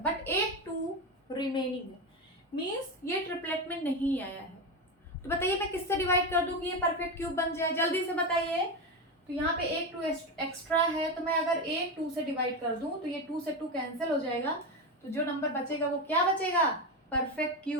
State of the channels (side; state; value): both; normal; correlation 0.16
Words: एक 2 रिमेनिंग है, मीन्स ये ट्रिपलेट में नहीं आया है। तो बताइए मैं किससे डिवाइड कर दूं कि ये परफेक्ट क्यूब बन जाए, जल्दी से बताइए। तो यहाँ पे एक 2 एक्स्ट्रा है, तो मैं अगर एक 2 से डिवाइड कर दूं तो ये 2 से 2 कैंसिल हो जाएगा, तो जो नंबर बचेगा वो क्या बचेगा, परफेक्ट